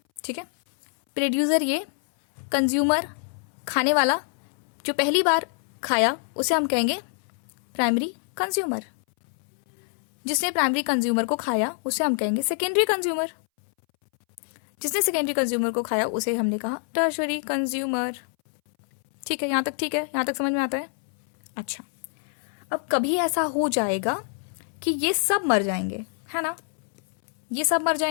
ठीक है। प्रोड्यूसर ये कंज्यूमर, खाने वाला, जो पहली बार खाया उसे हम कहेंगे प्राइमरी कंज्यूमर। जिसने प्राइमरी कंज्यूमर को खाया उसे हम कहेंगे सेकेंडरी कंज्यूमर। जिसने सेकेंडरी कंज्यूमर को खाया उसे हमने कहा टर्शरी कंज्यूमर, ठीक है। यहां तक ठीक है? यहां तक समझ में आता है? अच्छा, अब कभी ऐसा हो जाएगा कि ये सब मर जाएंगे, है ना। ये सब मर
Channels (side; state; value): right; silent; 61 dB below the other